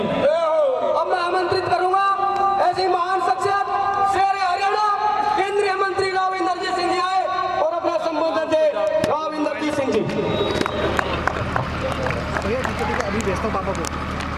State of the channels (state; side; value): identical; both; correlation 1.00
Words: अब मैं आमंत्रित करूंगा ऐसी महान शख्सियत शेर हरियाणा केंद्रीय मंत्री राव इंद्रजीत सिंह जी आए और अपना संबोधन दे। राव इंद्रजीत सिंह जी।